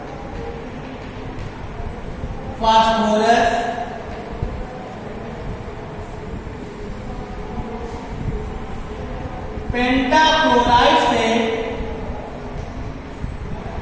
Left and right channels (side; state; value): both; identical; correlation 1.00